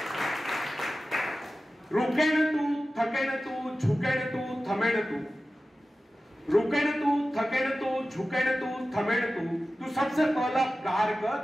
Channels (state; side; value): normal; both; correlation 0.94